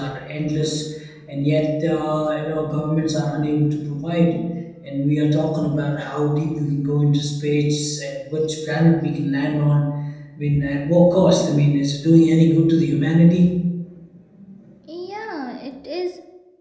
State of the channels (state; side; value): identical; both; correlation 1.00